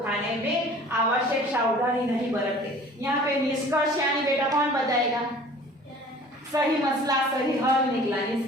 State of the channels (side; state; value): both; normal; correlation 0.47